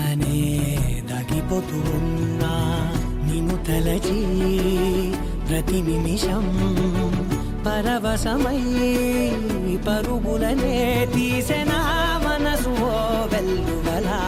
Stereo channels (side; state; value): both; identical; correlation 1.00